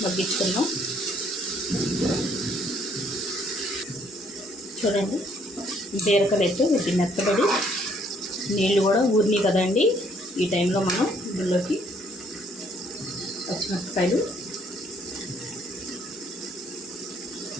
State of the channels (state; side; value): normal; both; correlation 0.65